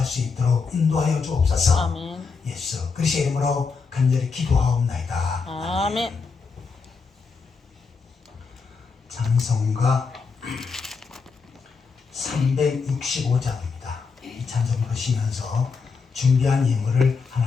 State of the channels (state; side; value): quieter; right; 5.0 dB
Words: 수 있도록 인도하여 주옵소서. 아멘. 예수 그리스도의 이름으로 간절히 기도하옵나이다. 아멘. 찬송가 365장입니다. 이 찬송 보시면서 준비한 예물을